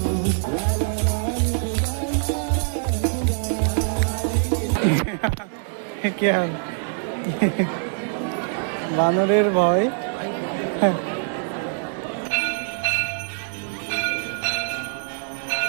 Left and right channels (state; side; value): silent; left; digital silence